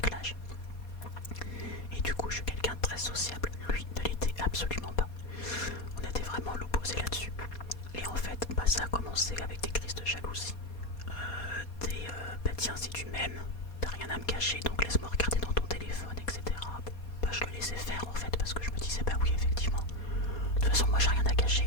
l'âge. Et du coup, je suis quelqu'un de très sociable. Lui ne l'était absolument pas. On était vraiment l'opposé là-dessus. Et en fait, ça a commencé avec des crises de jalousie. Tiens, si tu m'aimes, t'as rien à me cacher, donc laisse-moi regarder dans ton téléphone, etc. Bon, je le laissais faire en fait, parce que je me disais, oui, effectivement. De toute façon, moi, j'ai rien à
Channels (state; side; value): late; right; 4.2 ms